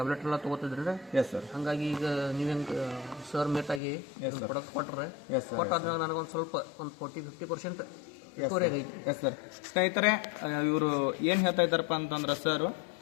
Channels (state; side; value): drops out; right; at 3.8 s